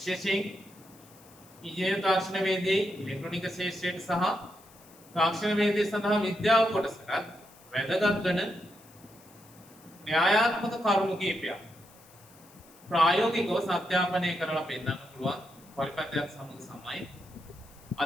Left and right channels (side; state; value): left; noise; hiss, 25 dB below the sound